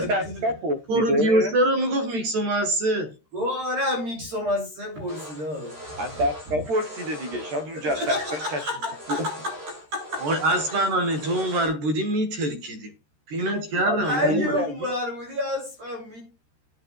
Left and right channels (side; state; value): left; late; 13 ms